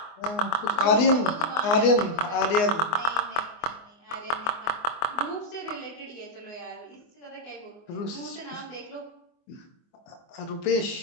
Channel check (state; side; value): late; right; 24 ms